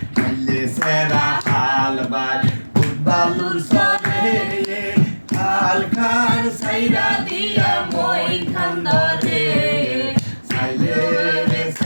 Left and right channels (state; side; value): inverted; both; correlation -1.00